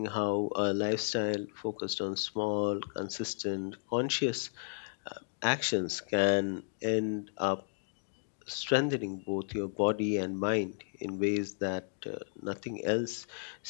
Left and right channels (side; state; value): right; silent; digital silence